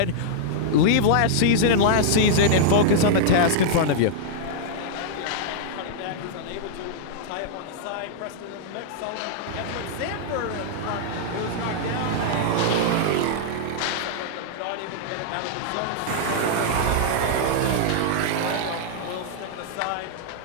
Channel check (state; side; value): different; both; correlation -0.02